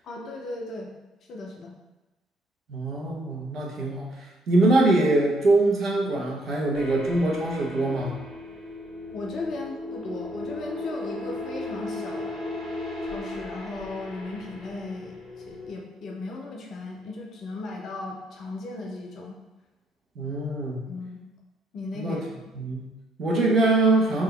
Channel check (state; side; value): normal; both; correlation 0.67